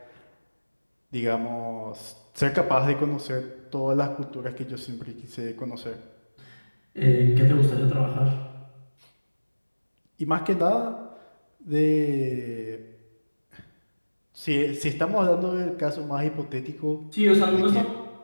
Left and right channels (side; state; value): both; inverted; correlation -1.00